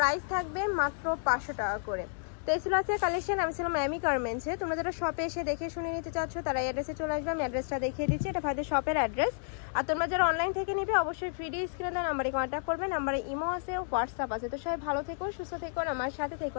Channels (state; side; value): silent; right; digital silence